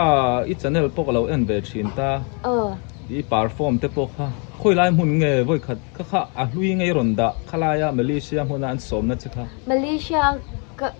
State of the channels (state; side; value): quieter; right; 36.4 dB